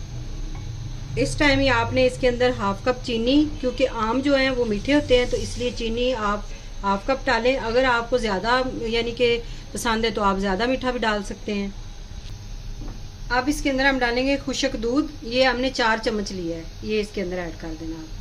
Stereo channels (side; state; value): both; identical; correlation 1.00